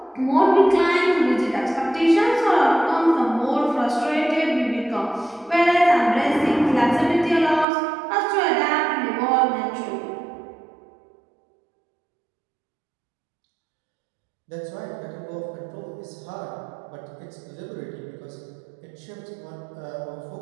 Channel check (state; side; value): drops out; left; at 7.7 s